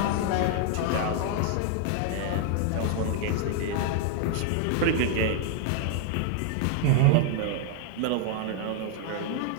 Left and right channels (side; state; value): both; different; correlation 0.00